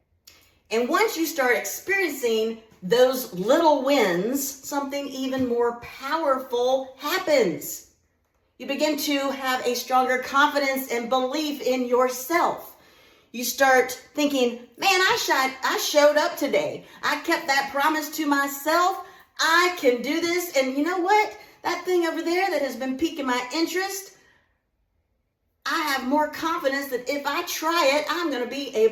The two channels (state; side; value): identical; both; correlation 1.00